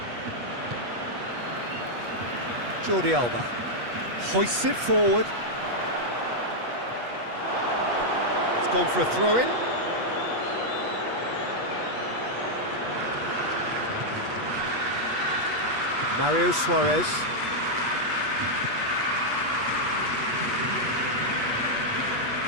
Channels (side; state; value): left; late; 8.3 ms